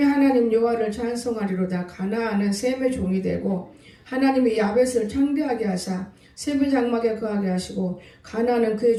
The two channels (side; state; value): both; identical; correlation 1.00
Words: 하나님 여호와를 찬송하리로다. 가나안은 셈의 종이 되고 하나님이 야벳을 창대하게 하사 셈의 장막에 거하게 하시고 가나안은 그의